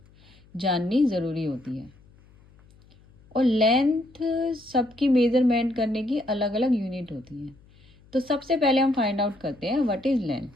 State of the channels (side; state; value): left; noise; hum, 28 dB below the sound